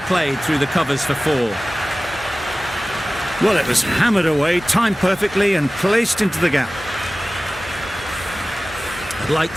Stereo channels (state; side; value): normal; both; correlation 0.97